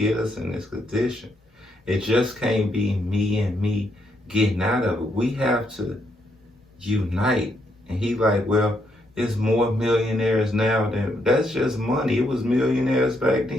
us in this condition. It just can't be me and me getting out of it. We have to unite. And he like, well, it's more millionaires now than, that's just money. It was millionaires back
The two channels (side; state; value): both; normal; correlation 0.76